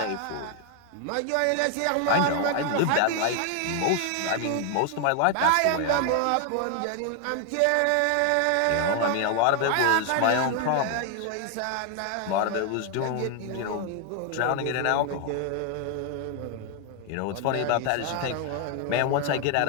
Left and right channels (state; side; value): different; both; correlation 0.00